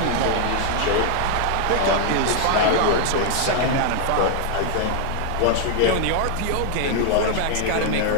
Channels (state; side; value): different; both; correlation 0.00